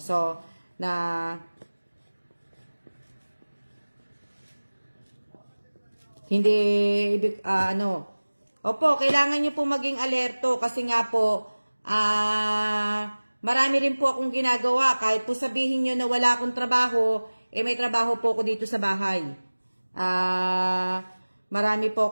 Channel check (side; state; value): both; inverted; correlation -1.00